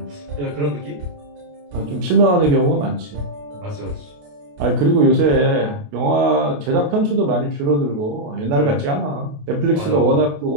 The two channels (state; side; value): late; left; 28 ms